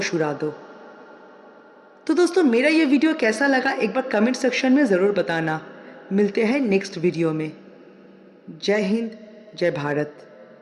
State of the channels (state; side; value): identical; both; correlation 1.00